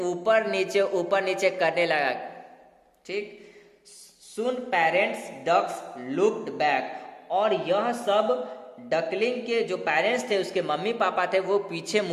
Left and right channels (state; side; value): identical; both; correlation 1.00